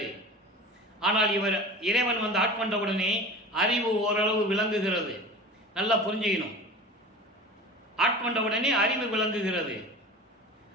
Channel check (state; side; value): normal; both; correlation 0.35